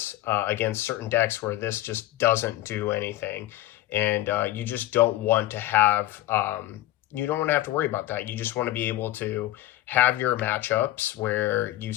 against certain decks where this just doesn't do anything. And you just don't want to have, you don't want to have to worry about that. You just want to be able to have your matchups where you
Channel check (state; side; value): quieter; right; 15.6 dB